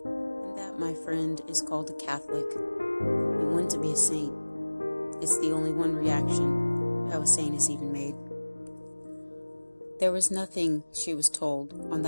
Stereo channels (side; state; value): both; inverted; correlation -1.00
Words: And that, my friend, is called a Catholic, and one to be a saint. It's the only one reaction, how a saint is even made. There was nothing, she was told, on